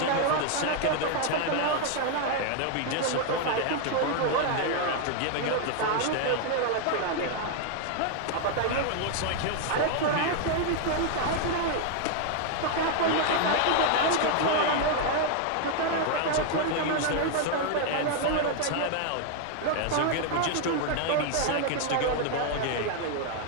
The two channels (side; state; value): both; different; correlation 0.00